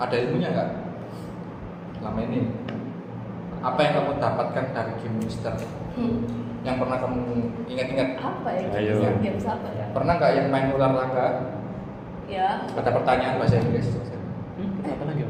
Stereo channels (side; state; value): both; identical; correlation 1.00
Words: ilmunya nggak? Selama ini apa yang kamu dapatkan dari game Mister? Yang pernah kamu ingat-ingat? Apa ya? Ayo. Games apa ya? Pernah nggak yang main ular tangga? Ya. Ada pertanyaan bahasa Inggris. apa lagi?